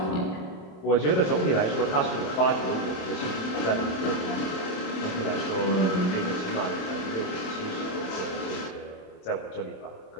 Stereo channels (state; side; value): late; right; 27 ms